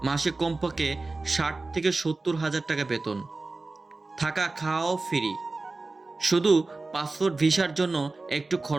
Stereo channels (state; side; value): quieter; left; 3.5 dB